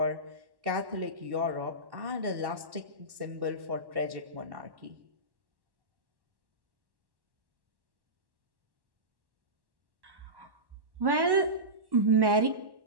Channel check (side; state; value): left; late; 1.1 ms